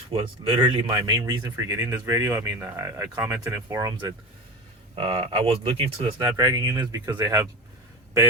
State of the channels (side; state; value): both; normal; correlation 0.26